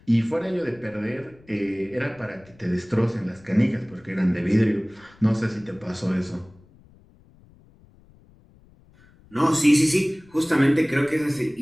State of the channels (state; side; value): noise; left; rumble, 27 dB below the sound